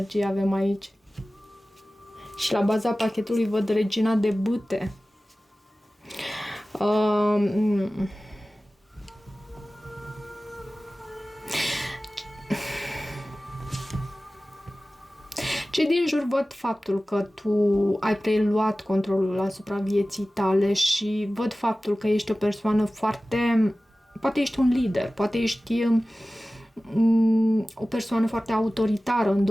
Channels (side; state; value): both; normal; correlation 0.97